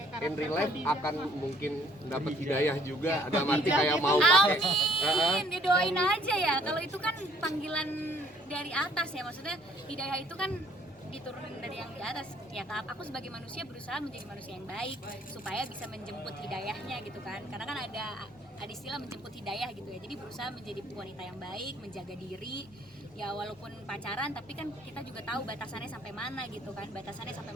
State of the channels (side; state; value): both; normal; correlation 0.61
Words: karakter in real life Khadijah. akan mungkin dapat hidayah juga, ada arti kayak mau pakai. Amin, didoain aja ya. Kalau itu kan panggilan dari atas ya, maksudnya hidayah itu kan diturunin dari yang di atas. Ya aku sebagai manusia berusaha menjadi manusia yang baik supaya bisa menjemput hidayahnya gitu kan. Karena kan ada istilah menjemput hidayah gitu ya. Jadi berusaha menjadi wanita yang baik, menjaga diri. Ya walaupun pacaran tapi kan kita juga tahu batasannya sampai mana gitu kan. Batasannya sampai